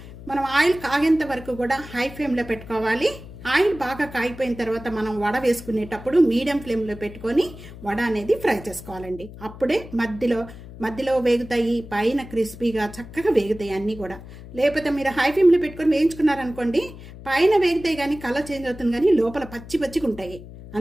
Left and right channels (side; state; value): left; noise; hum, 15 dB below the sound